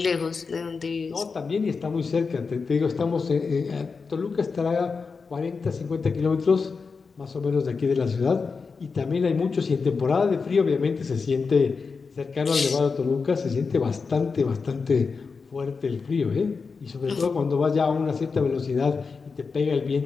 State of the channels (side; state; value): right; quieter; 4.9 dB